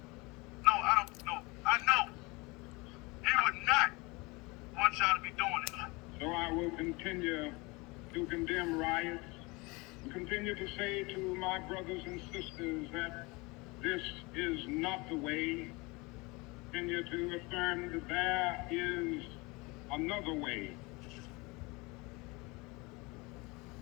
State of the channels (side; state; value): right; quieter; 25.5 dB